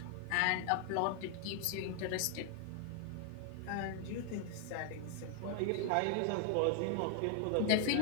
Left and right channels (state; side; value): different; both; correlation 0.00